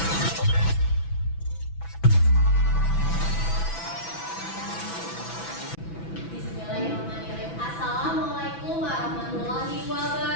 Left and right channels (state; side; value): late; right; 6.0 ms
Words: Bismillahirrahmanirrahim. Assalamualaikum warahmatullahi